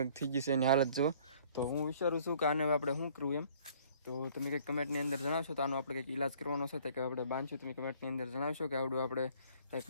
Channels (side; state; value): both; inverted; correlation -0.56